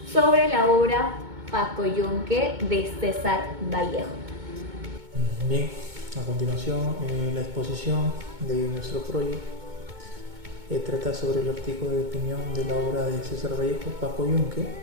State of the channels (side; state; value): left; late; 2.2 ms